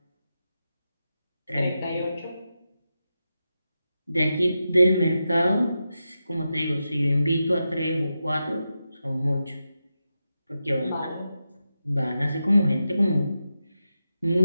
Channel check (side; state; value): both; inverted; correlation -0.89